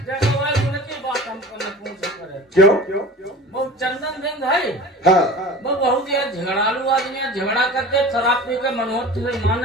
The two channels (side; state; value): both; normal; correlation 0.37